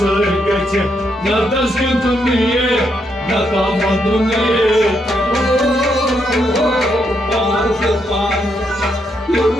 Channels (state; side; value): normal; both; correlation 0.78